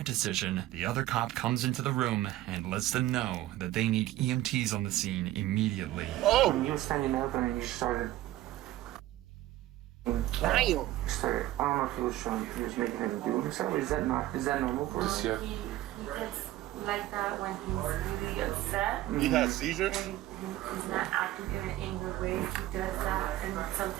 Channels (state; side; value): quieter; left; 15.3 dB